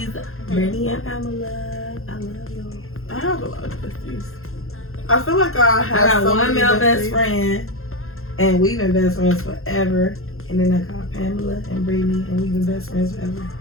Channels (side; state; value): right; late; 0.61 ms